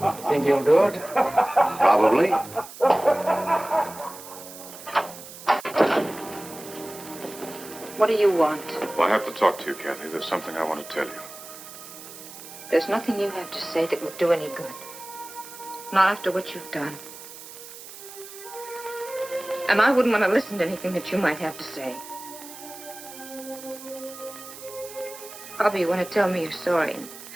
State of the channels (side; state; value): right; noise; hiss, 15 dB below the sound